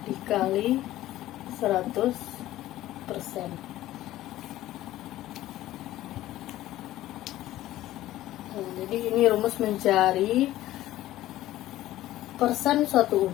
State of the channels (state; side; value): quieter; right; 14.8 dB